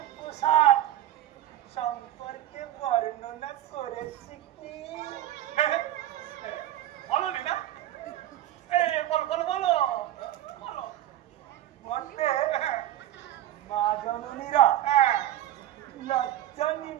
পোশাক সম্পর্কে বর্ণনা করেছি কি? বলো না, বলো বলো বলো বলো। মতে মা জননীরা লজ্জা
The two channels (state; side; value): quieter; left; 13.0 dB